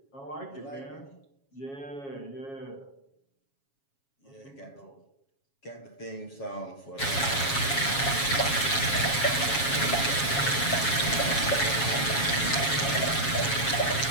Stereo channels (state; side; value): late; right; 7.3 ms